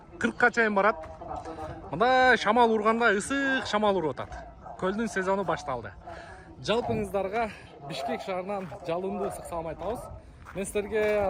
чейин барат. Мында шамал урганда ысык шамал уруп атат. Көлдүн сезону башталды. Жалпыңыздарга Бишкек шаарынан жалындуу ысык салам айтабыз. Мен силерге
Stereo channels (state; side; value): identical; both; correlation 1.00